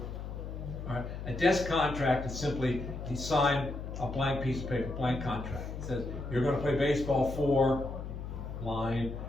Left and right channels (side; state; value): left; noise; hum, 7 dB below the sound